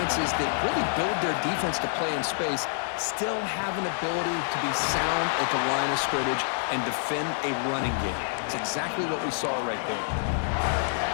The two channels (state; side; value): silent; right; digital silence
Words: that really build their defense to play in space still have an ability to be sound at the line of scrimmage and defend a running game. It's exactly what we saw right there.